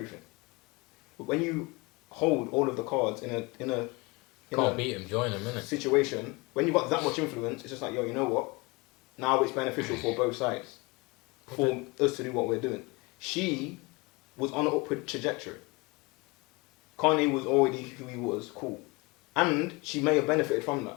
But when you hold all of the cards in a Can't beat him, join him, innit? situation, when you've got that much influence, it's just like, yo, you know what? Now it's beneficial for both sides. For us to do what we're doing. She was on an upward trajectory. Kanye was already who he was, cool. And she may have benefited from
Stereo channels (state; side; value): quieter; right; 25.8 dB